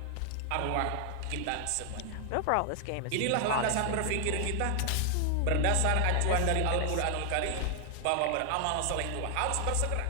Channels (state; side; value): different; both; correlation 0.00